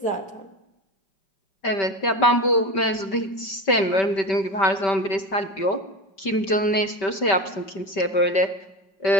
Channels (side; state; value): right; late; 5.2 ms